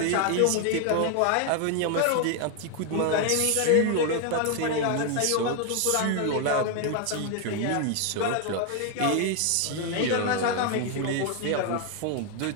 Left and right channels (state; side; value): different; both; correlation 0.01